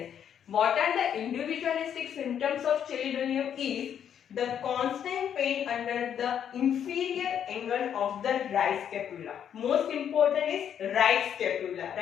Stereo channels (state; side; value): quieter; right; 8.9 dB